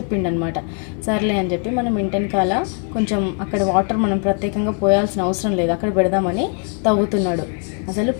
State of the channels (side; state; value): right; quieter; 38.8 dB